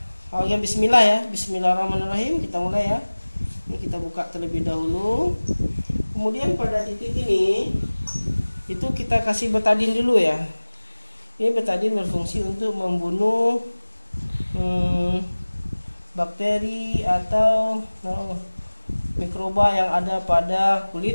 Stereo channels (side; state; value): both; inverted; correlation -1.00